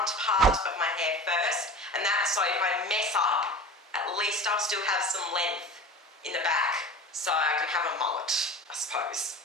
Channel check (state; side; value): normal; both; correlation 0.35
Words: part of my hair first, and that's so if I mess up, at least I'll still have some length in the back, so I can have a mullet, I suppose.